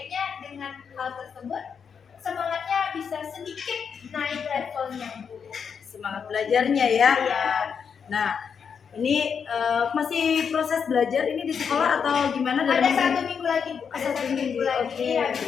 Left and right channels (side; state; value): right; quieter; 6.7 dB